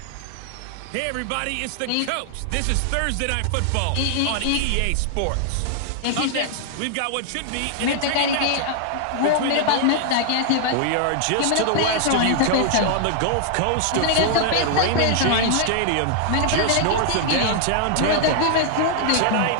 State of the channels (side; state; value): both; different; correlation -0.01